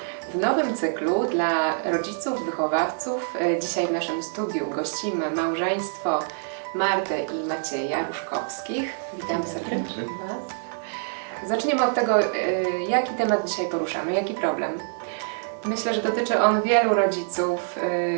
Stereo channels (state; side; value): silent; left; digital silence